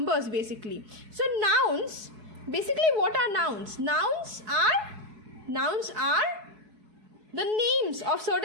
basically. So nouns, basically what are nouns? Nouns are the names of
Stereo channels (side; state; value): left; late; 4.7 ms